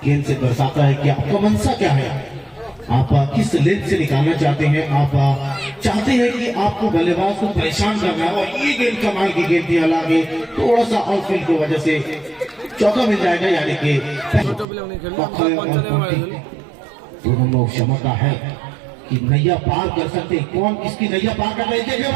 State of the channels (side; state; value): left; drops out; at 14.7 s